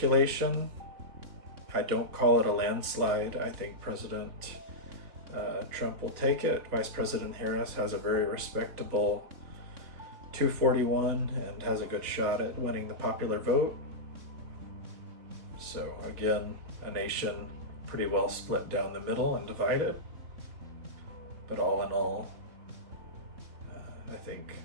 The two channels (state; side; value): late; left; 3.5 ms